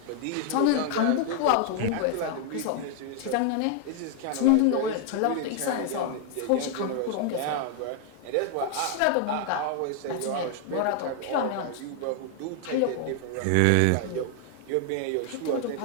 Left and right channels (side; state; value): both; different; correlation 0.00